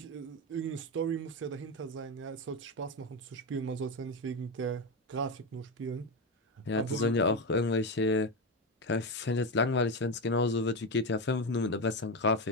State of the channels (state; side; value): normal; both; correlation 0.13